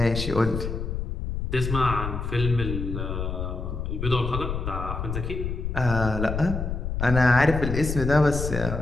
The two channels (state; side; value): noise; left; rumble, 4 dB below the sound